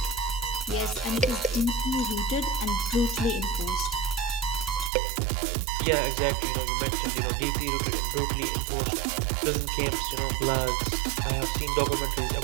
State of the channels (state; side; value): drops out; left; at 4.9 s